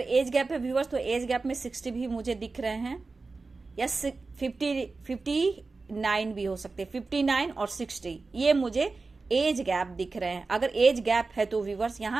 गैप है व्यूवर्स तो एज गैप में 60 भी मुझे दिख रहे हैं, या 59 भी हो सकते हैं, 59 और 60 ये मुझे एज गैप दिख रहे हैं। अगर एज गैप है तो व्यूवर्स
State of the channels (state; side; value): quieter; left; 3.9 dB